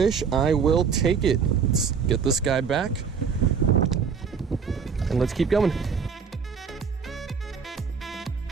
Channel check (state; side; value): quieter; left; 6.2 dB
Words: I will take it. Let's get this guy back, and let's keep going.